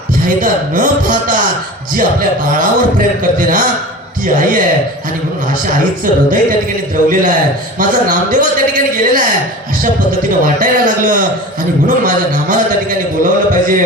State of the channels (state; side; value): normal; both; correlation 0.35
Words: फायदा न पाहता जी आपल्या बाळावर प्रेम करते ना ती आई आहे. आणि म्हणून अशा आईचं हृदय त्या ठिकाणी द्रवलेलं आहे. माझा नामदेव त्या ठिकाणी गेलेला आहे अशा पद्धतीने वाटायला लागलं आणि म्हणून माझ्या नामाला त्या ठिकाणी बोलावलं